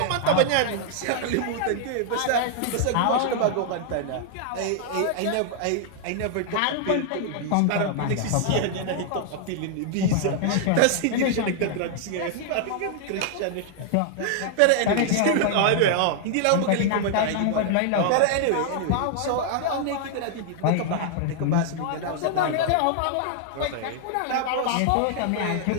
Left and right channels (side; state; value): both; different; correlation 0.00